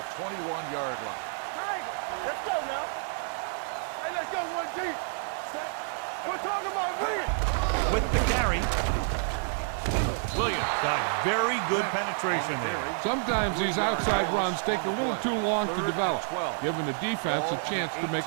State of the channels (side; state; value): left; silent; 59 dB below the other